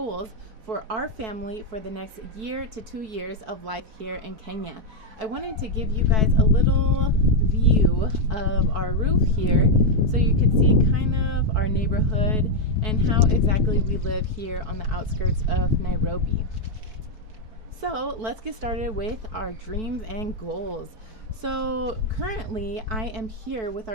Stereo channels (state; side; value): late; left; 4.6 ms